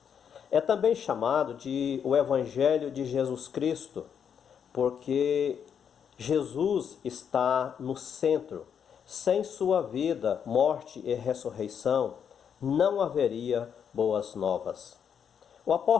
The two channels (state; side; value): quieter; right; 7.8 dB